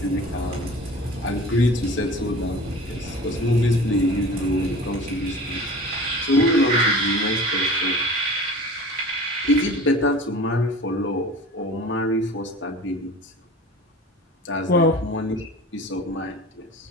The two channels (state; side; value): normal; both; correlation 0.39